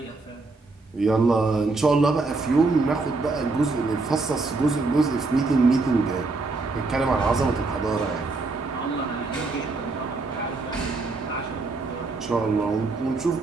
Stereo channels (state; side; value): quieter; left; 3.6 dB